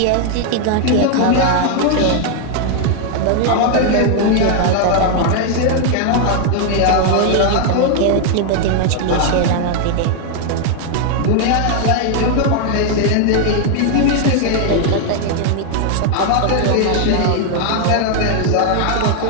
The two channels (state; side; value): different; both; correlation 0.00